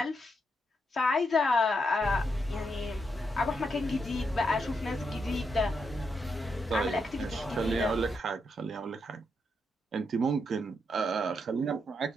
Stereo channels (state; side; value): normal; both; correlation 0.81